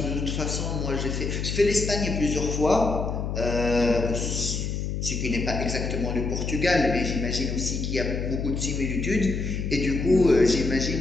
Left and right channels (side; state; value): left; noise; hum, 3 dB below the sound